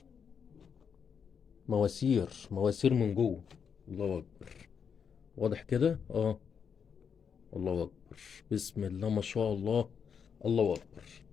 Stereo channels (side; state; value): right; quieter; 6.9 dB